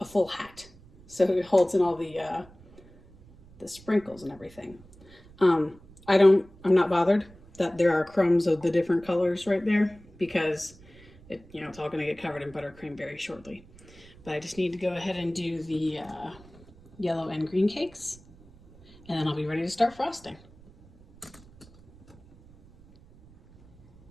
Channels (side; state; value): right; noise; rumble, 24 dB below the sound